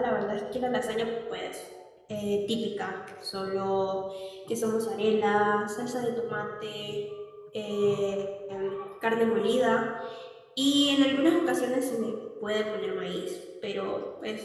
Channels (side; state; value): both; identical; correlation 1.00